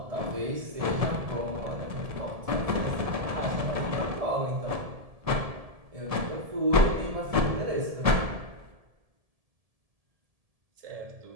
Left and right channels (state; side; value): late; left; 1.7 ms